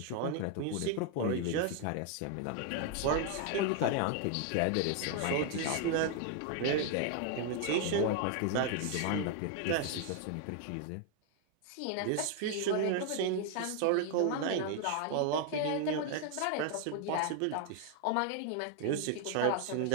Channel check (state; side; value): different; both; correlation 0.00